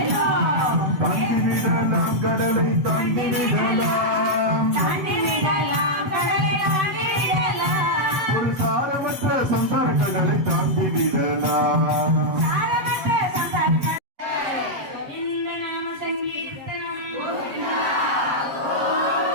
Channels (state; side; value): late; left; 7.7 ms